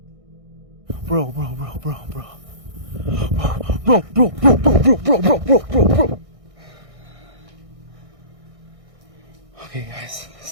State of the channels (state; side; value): late; left; 1.6 ms